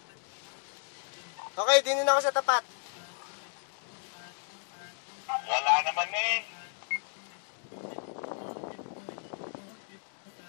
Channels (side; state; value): right; silent; digital silence